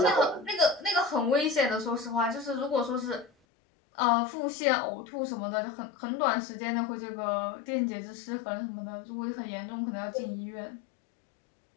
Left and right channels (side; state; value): right; drops out; at 3.3 s